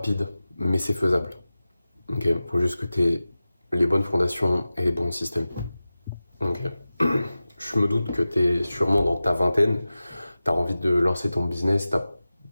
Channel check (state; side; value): inverted; both; correlation -0.95